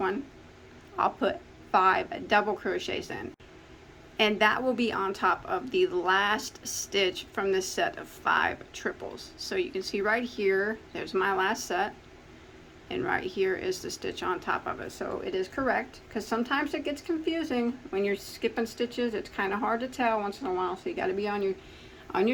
I'll put 5 double crochets in, and that will be on top of the last stitch from this set of 5 triples. So you can see right here, there's my last set, and right here is the stitch on top of it. So it is correct, because sometimes it gets confusing when you're skipping stitches. It's kind of hard to tell once in a while, so you got to be on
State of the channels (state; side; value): identical; both; correlation 1.00